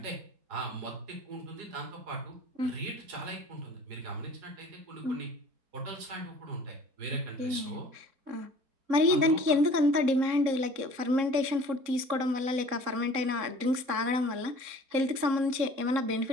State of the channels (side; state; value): left; late; 3.7 ms